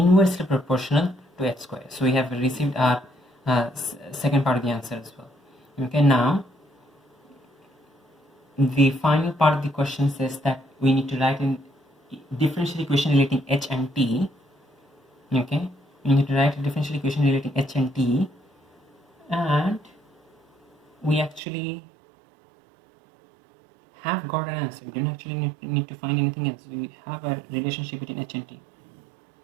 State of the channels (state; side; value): drops out; left; at 21.4 s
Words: proportional to h square. So we have received our second part of the answer as well. Okay, now the final part of the question says that we need to write in differential equation relating h and t. Okay, we need to write a differential equation relating h and t, and we actually have got an answer. We don't actually need to find anything else. We have a relationship between h and t.